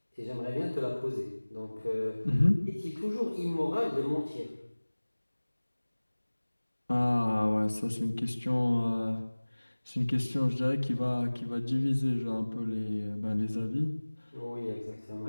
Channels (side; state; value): both; inverted; correlation -1.00